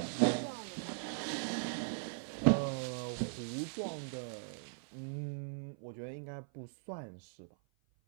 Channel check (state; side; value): silent; left; 52 dB below the other